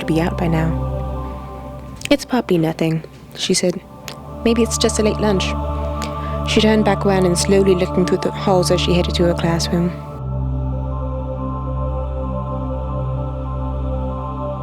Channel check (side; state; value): both; identical; correlation 1.00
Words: be out by now. "It's probably nothing," she said. "Maybe it's just a late lunch." She turned back around and slowly looking through the halls as she headed to her classroom.